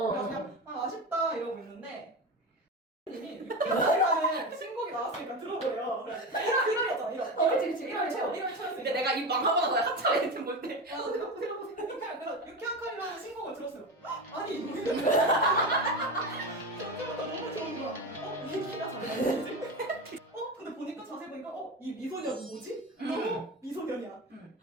그래서 그냥 아쉽다 이러고 있는데 님이 늑자라는 신곡이 나왔으니까 들어보래요. 1월이었잖아 1월. 그치. 1월 초였으니까. 근데 내가 이 망하고 나서 한참 애들 볼 때. 그래서 유쾌한 칼이라는 신곡을 들었어요. 아니 이거 처음부터 너무 좋은 거야. 이 키가 잘 나오지? 근데 보니까 자세히 보니까 이 미소년 뭐지? 너무 미소년이야.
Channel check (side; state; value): both; normal; correlation 0.22